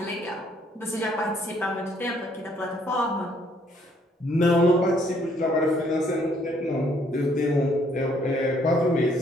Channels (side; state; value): both; normal; correlation 0.66